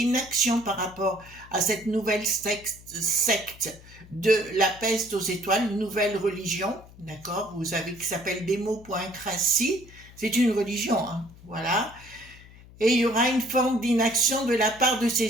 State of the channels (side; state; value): left; noise; hum, 21 dB below the sound